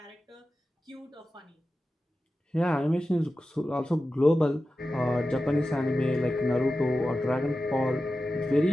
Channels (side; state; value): both; normal; correlation 0.93